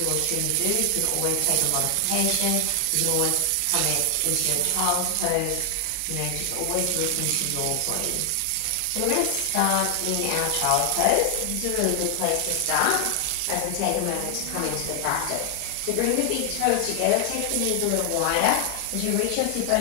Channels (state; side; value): different; both; correlation 0.00